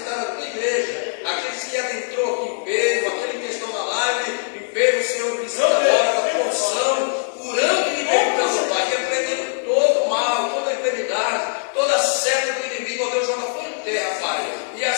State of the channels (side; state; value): right; silent; 60 dB below the other